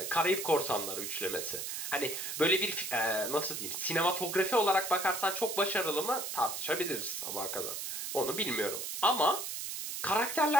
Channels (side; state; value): right; noise; hiss, 5 dB below the sound